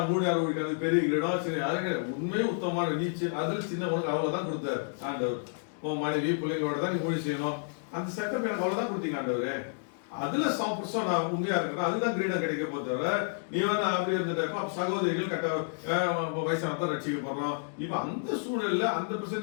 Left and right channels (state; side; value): silent; right; digital silence